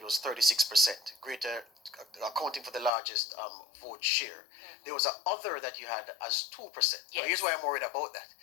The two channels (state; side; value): drops out; right; at 2.9 s